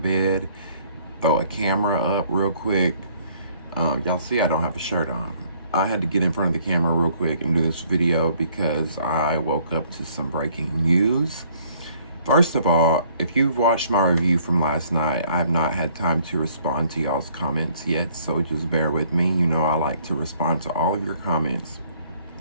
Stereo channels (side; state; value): both; inverted; correlation -0.62